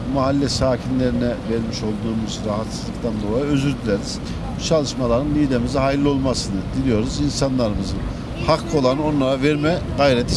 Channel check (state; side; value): identical; both; correlation 1.00